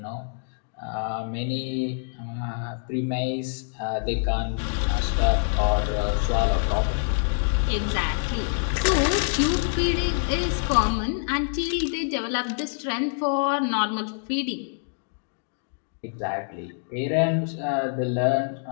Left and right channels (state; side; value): silent; right; digital silence